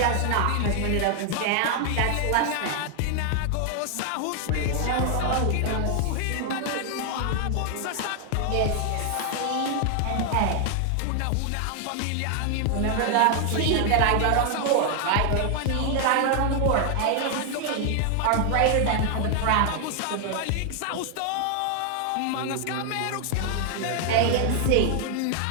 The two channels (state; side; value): different; both; correlation 0.00